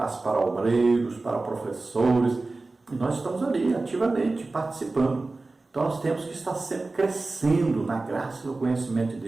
para obreiros, para professores. E nós estamos ali ativamente participando. Então nós temos que estar sempre crescendo na graça e no conhecimento de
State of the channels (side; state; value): left; quieter; 3.4 dB